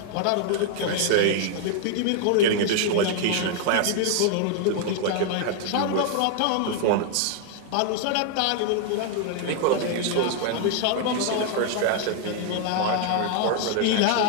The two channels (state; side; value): different; both; correlation 0.00